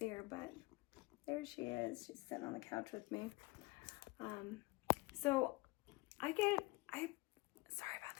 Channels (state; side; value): quieter; right; 23.2 dB